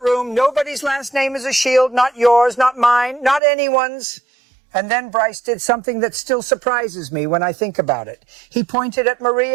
nobody's last name is a shield, not yours, not mine, not anyone's. And then Bryce did something that still surprises me when I think about it. He pointed at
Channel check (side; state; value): left; drops out; at 3.4 s